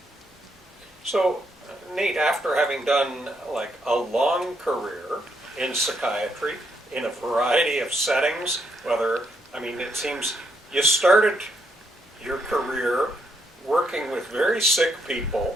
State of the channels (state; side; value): normal; both; correlation 0.76